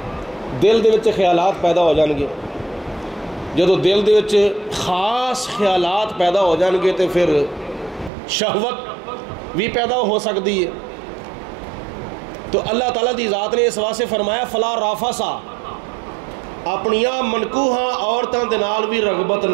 دل دے وچ خیالات پیدا ہو جان گے، جدو دل دے وچ خاص خیالات پیدا ہو جان گے تو پھر شہوت بھی پیدا ہو سکتی ہے۔ تو اللہ تعالیٰ دی ذات نے اس واسطے فرمایا فلا رافثا، اپنیاں منکوحاں عورتاں دے نال بھی رغبت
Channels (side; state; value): left; drops out; at 8.1 s